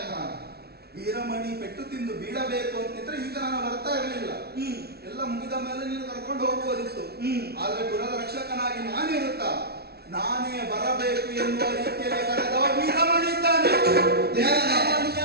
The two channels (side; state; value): left; late; 0.46 ms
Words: ವೀರಮಣಿ ಪೆಟ್ಟು ತಿಂದು ಬೀಳಬೇಕು ಅಂತಿದ್ರೆ ಈಗ ನಾನು ಬರ್ತಾ ಇರಲಿಲ್ಲ, ಎಲ್ಲ ಮುಗಿದ ಮೇಲೆ ನೀನು ಕರ್ಕೊಂಡು ಹೋಗುವುದಿತ್ತು. ಆದ್ರೆ ಕುಲದ ರಕ್ಷಕನಾಗಿ ನಾನಿರುತ್ತಾ ನಾನೇ ಬರಬೇಕು ಎನ್ನುವ ರೀತಿಯಲ್ಲಿ ಕರೆದವ ವೀರಮಣಿ ಇದ್ದಾನೆ.